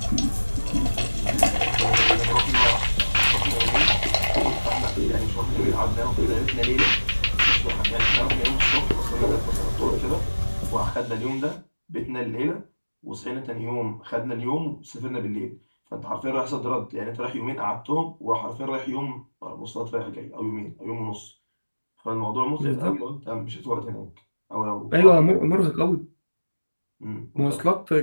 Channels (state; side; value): inverted; both; correlation -1.00